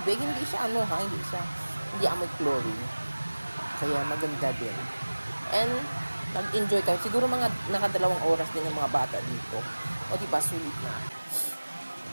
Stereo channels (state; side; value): inverted; both; correlation -1.00